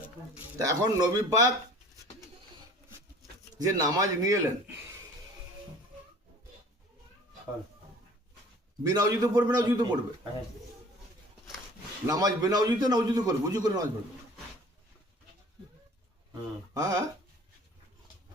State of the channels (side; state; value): both; normal; correlation 0.48